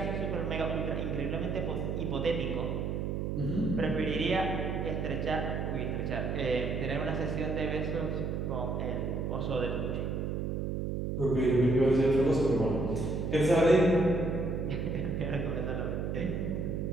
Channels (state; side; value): noise; right; hum, 1 dB below the sound